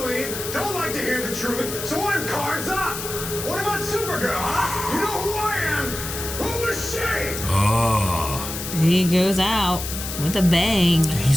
don't like to hear the truth, so I'm cards up. What about Supergirl, huh? You know who I am? Who was she? Oh. He goes out with a bang. Dude,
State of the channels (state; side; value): noise; left; hiss, 7 dB below the sound